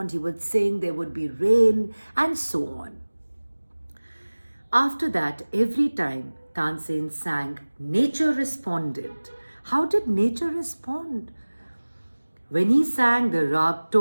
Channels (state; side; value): inverted; both; correlation -1.00